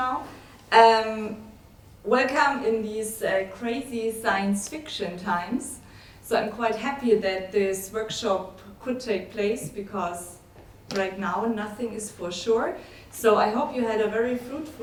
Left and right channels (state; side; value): identical; both; correlation 1.00